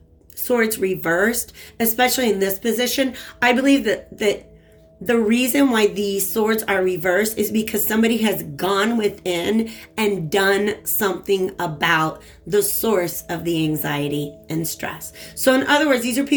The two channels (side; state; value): both; identical; correlation 1.00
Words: swords reversed, especially in this position, I believe that the reason why these swords are reversed is because somebody has gone within and done something about the source of the anxiety and stress. So in other words, these are